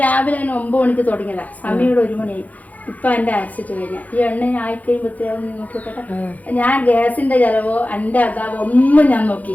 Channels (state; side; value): late; right; 0.077 ms